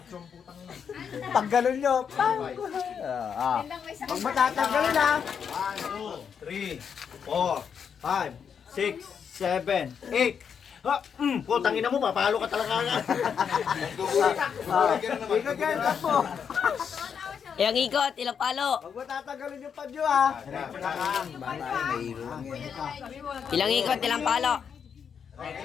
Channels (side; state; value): right; quieter; 7.1 dB